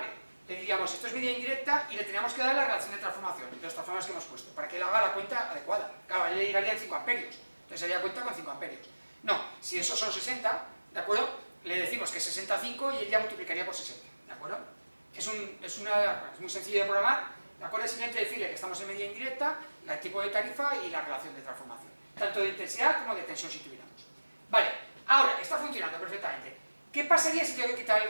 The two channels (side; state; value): both; inverted; correlation -1.00